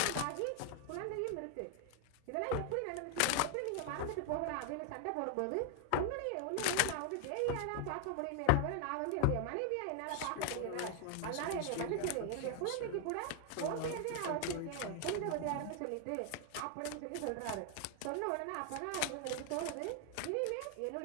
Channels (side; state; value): both; different; correlation 0.00